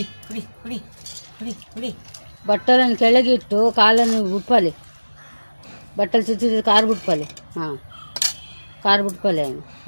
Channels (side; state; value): both; inverted; correlation -1.00